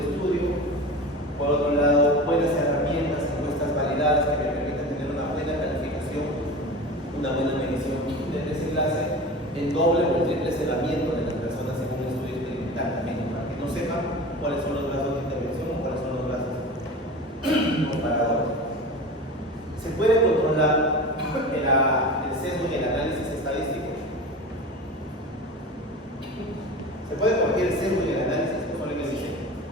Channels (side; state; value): both; normal; correlation 0.32